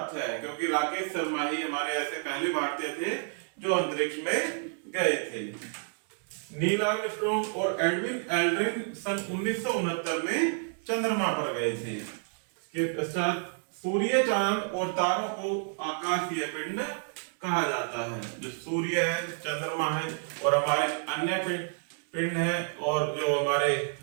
है, क्योंकि राकेश शर्मा ही हमारे ऐसे पहले भारतीय थे जो अंतरिक्ष में गए थे। नील आर्मस्ट्रॉन्ग और एडविन एल्ड्रिन सन 1969 में चंद्रमा पर गए थे। इसके पश्चात सूर्य, चांद और तारों को आकाशीय पिंड कहा जाता है। जो सूर्य है, चंद्रमा है और हमारे अन्य पिंड है, और जो हमारे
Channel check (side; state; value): left; silent; 57 dB below the other